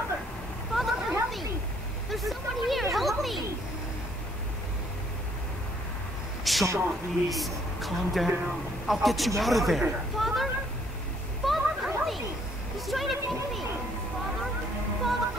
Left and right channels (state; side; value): normal; both; correlation 0.64